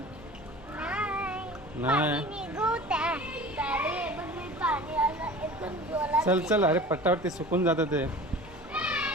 नाही। चल चल अरे पटापट ते सुकून जातं ते।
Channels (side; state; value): both; normal; correlation 0.40